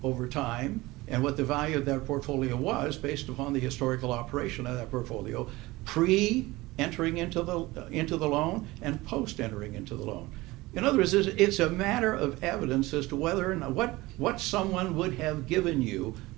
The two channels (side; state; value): left; quieter; 20.2 dB